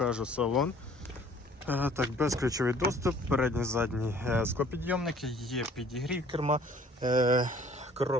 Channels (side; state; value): both; normal; correlation 0.54